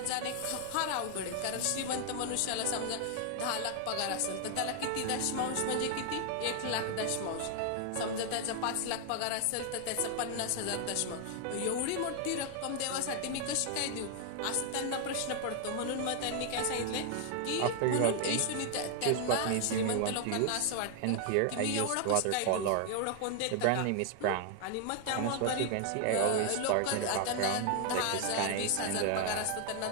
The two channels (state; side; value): different; both; correlation 0.00